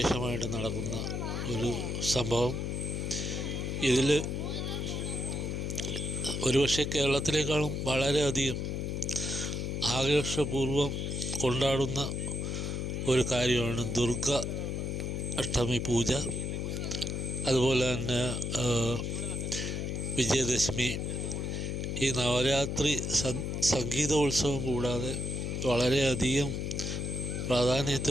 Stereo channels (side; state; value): left; noise; hum, 2 dB below the sound